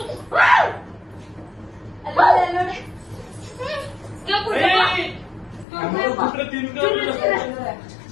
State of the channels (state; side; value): drops out; right; at 5.7 s